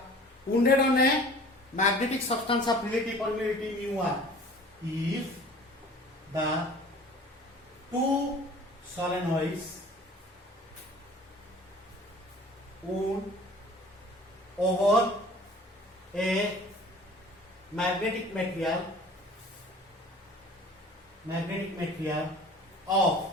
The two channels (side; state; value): both; normal; correlation 0.47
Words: wounded on a magnetic substance of relative permeability mu1, if the two solenoids wound over a magnetic material of